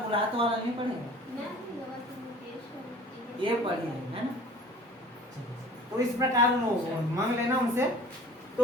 तो वाला नहीं पढ़ेगा, ये पढ़ी है ना। तो इस प्रकार मांग लेना उनसे।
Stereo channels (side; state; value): both; normal; correlation 0.47